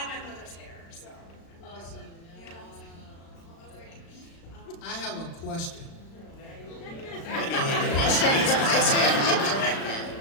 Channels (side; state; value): right; late; 36 ms